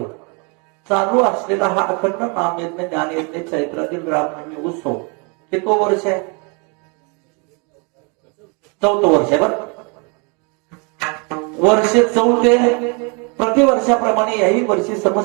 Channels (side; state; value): left; quieter; 33.5 dB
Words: चालू असलेला हा अखंड नामयज्ञ ज्ञानयज्ञ चैत्रातील रामनवमी उत्सव कितवं वर्ष आहे? 4थं वर्ष आहे. बरं, वर्ष 4 प्रतिवर्षाप्रमाणे याही वर्षी